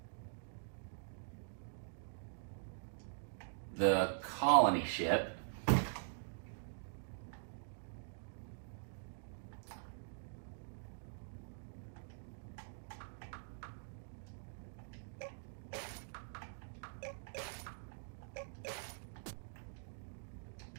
the colony ship.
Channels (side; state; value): left; silent; digital silence